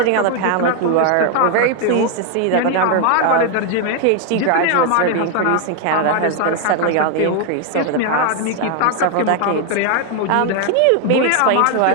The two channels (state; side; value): different; both; correlation 0.00